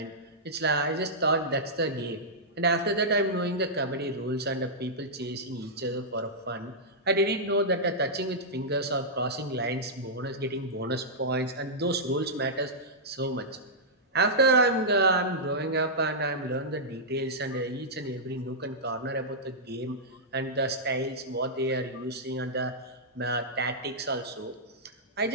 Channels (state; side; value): normal; both; correlation -0.11